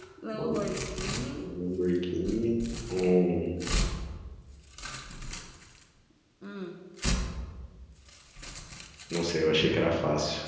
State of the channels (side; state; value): both; identical; correlation 1.00